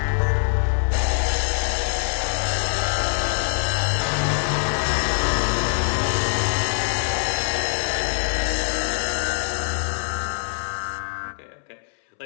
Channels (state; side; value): silent; right; 63 dB below the other